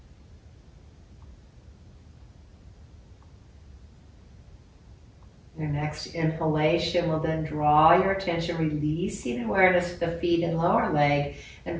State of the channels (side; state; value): both; identical; correlation 1.00